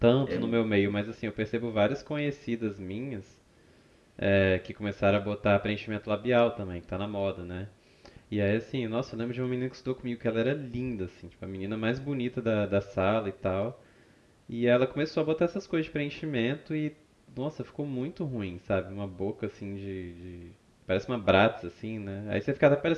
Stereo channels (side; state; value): both; identical; correlation 1.00